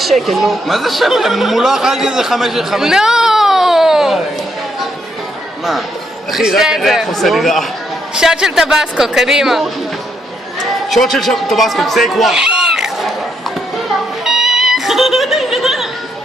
שקל, נו. מה זה שקל? מולו אכלתי איזה 5 שקל. נו. מה? אחי, רק הריח עושה לי רע. שוט של טבסקו, קדימה. שוט של טבסקו, טייק 1.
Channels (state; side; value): normal; both; correlation 0.75